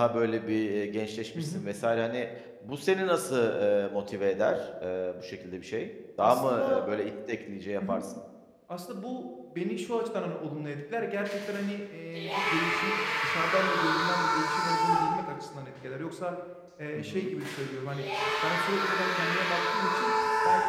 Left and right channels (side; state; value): both; identical; correlation 1.00